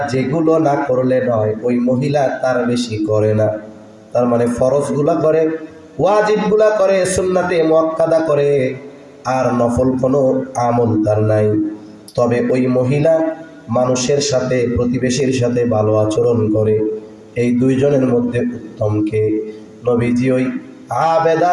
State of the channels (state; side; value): identical; both; correlation 1.00